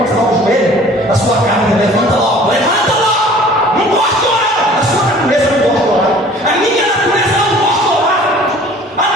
você dá o joelho, a sua carne levanta logo, não gosto de orar, a sua natureza não gosta de orar, a minha natureza não gosta de orar, a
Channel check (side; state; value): both; normal; correlation 0.49